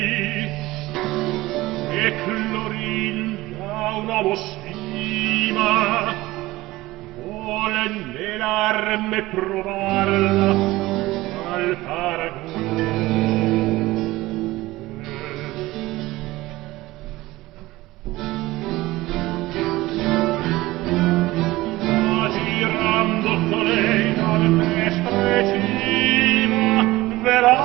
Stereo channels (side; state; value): left; quieter; 18.6 dB